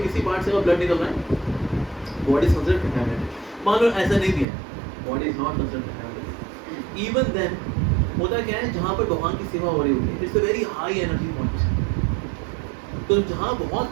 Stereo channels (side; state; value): left; drops out; at 4.5 s